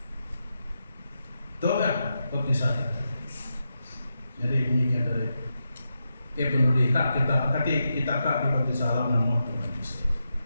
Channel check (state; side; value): inverted; both; correlation -0.87